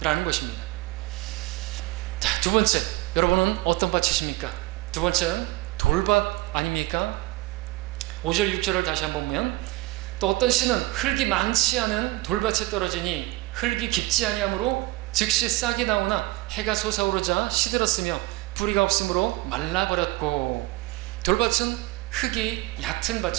것입니다. 자, 두 번째, 여러분은 어떤 밭이십니까? 두 번째는 돌밭 아닙니까? 5절 6절을 다시 한번 보면, 또 어떤 씨는 흙이 많지 않은 돌밭에 떨어지니 흙이 깊지 아니하므로 즉시 싹이 나오나 해가 솟아오르자 시들었으며 뿌리가 없으므로 말라버렸고. 돌밭은 흙이 얕은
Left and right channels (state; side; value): quieter; left; 20.3 dB